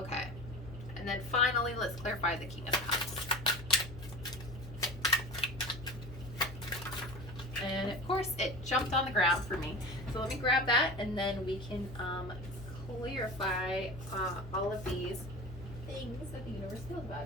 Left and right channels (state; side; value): noise; left; hum, 13 dB below the sound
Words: And then finally, let's clarify the King of Cups. And of course, it jumped on the ground for me. So let me grab that, and then we can clarify all of these things that the universe feels